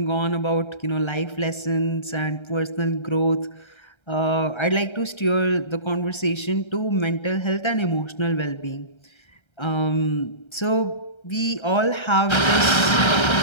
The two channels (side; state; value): right; late; 1.3 ms